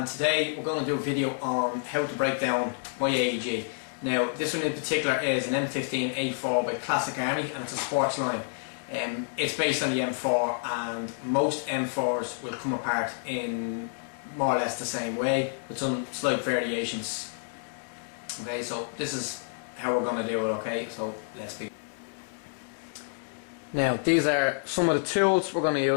today we're going to do a video on how to break down my AEG. Now this one in particular is an M15A4 by Classic Army, and it's a sports line. It's based on the M4, and most M4s will come apart in more or less the same way with some slight variations. Okay, so this is how we're going to do it, okay, so let's begin. Now these are some of the tools we're going to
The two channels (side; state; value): right; silent; digital silence